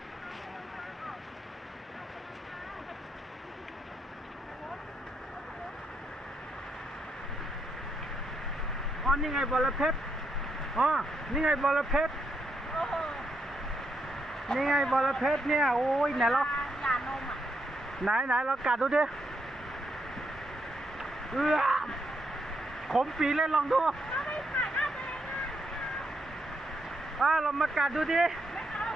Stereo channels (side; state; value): both; normal; correlation 0.79